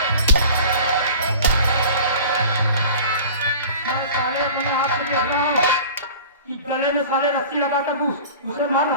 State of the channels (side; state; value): both; inverted; correlation -0.39